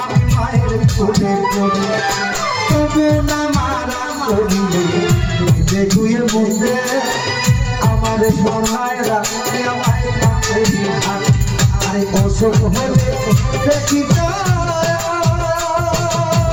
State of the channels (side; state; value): both; identical; correlation 1.00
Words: মায়ের কোলে করি তবু না মারা করিলে ধুয়ে মুখে আমার সবাইরা মায়ের কাছে থাকে আরে অসুখ হলে দেখি